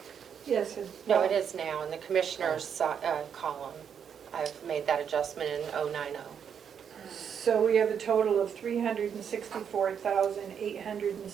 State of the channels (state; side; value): quieter; left; 7.7 dB